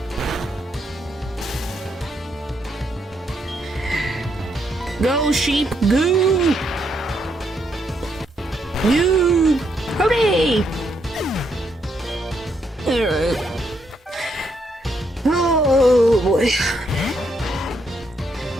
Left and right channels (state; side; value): normal; both; correlation 0.76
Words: Go, sheep, go! Go! Hooray! Alright. Oh boy.